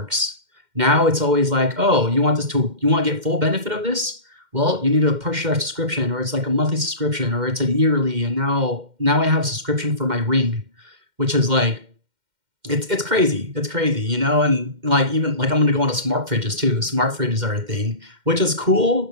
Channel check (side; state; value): left; late; 2.1 ms